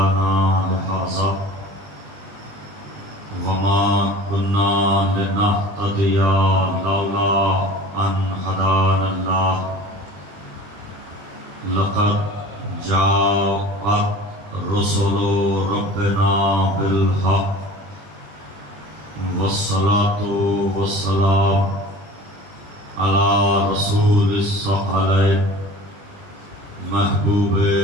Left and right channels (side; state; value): left; late; 20 ms